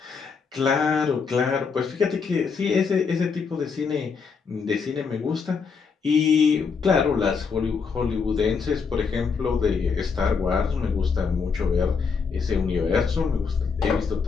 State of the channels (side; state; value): right; quieter; 5.5 dB